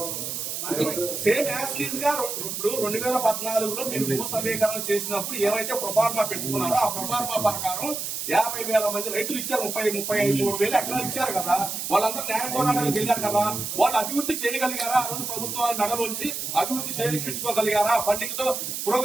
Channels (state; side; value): noise; right; hiss, 4 dB below the sound